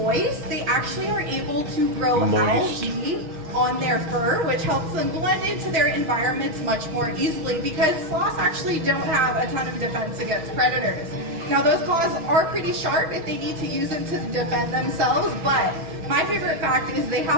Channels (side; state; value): left; late; 6.3 ms